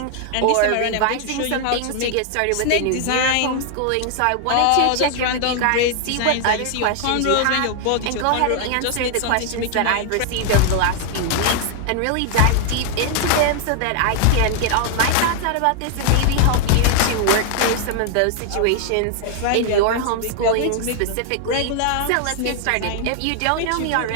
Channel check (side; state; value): both; different; correlation 0.00